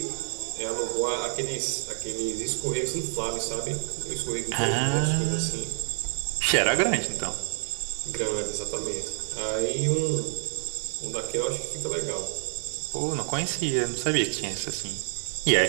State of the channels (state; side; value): silent; left; 59 dB below the other